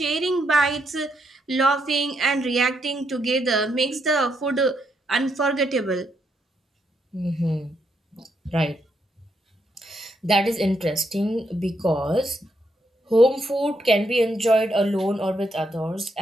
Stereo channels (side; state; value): both; normal; correlation 0.78